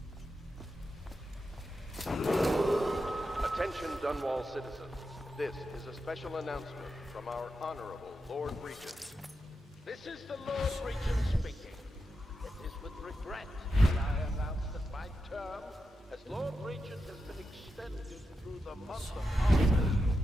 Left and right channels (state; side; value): normal; both; correlation 0.88